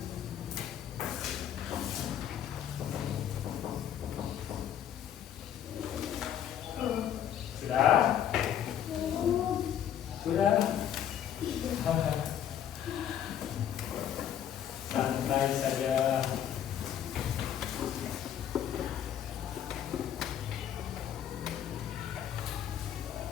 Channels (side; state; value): right; quieter; 9.9 dB